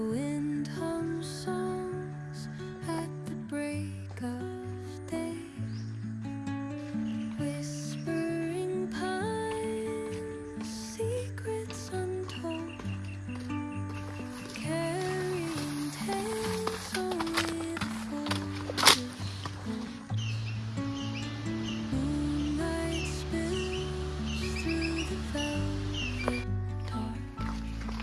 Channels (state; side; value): identical; both; correlation 1.00